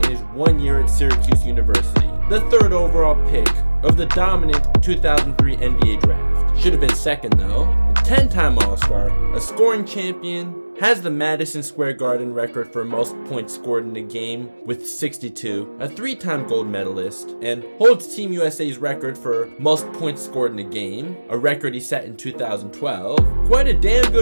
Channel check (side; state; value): both; inverted; correlation -1.00